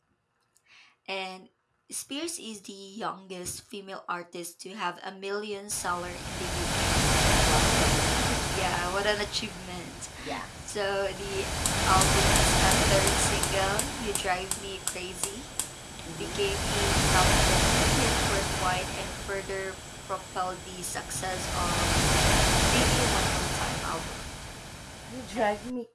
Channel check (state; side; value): identical; both; correlation 1.00